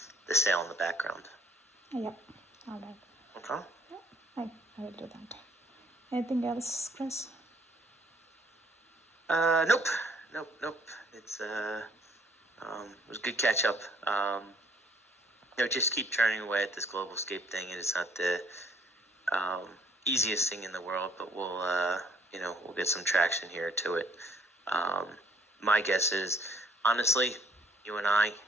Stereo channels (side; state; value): both; normal; correlation 0.62